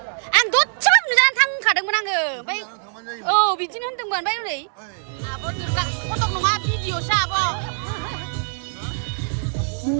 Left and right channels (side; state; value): left; silent; digital silence